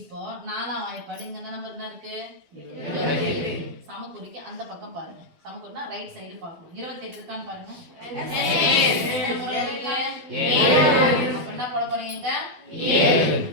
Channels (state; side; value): late; left; 12 ms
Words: 4ஆம் வாய்ப்பாடு இங்க என்ன நம்பர் என்ன இருக்கு? 28. சமக்குறிக்கு அந்த பக்கம் பாருங்க. சமக்குறினா ரைட் சைடு பார்க்கணும். 28 இருக்கான்னு பாருங்க. அப்ப என்ன போட போறீங்க? 7.